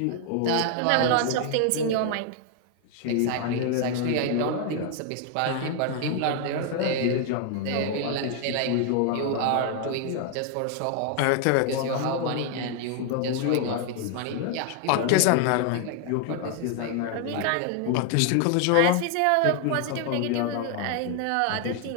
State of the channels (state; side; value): different; both; correlation 0.00